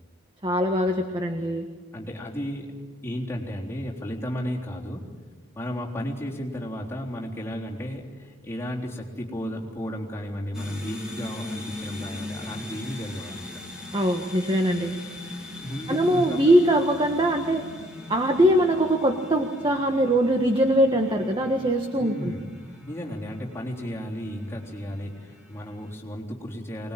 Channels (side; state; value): both; normal; correlation 0.65